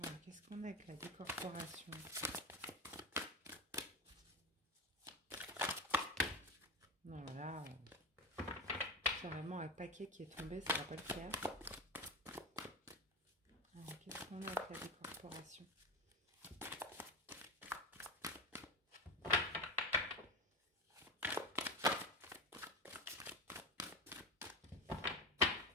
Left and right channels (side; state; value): both; normal; correlation 0.21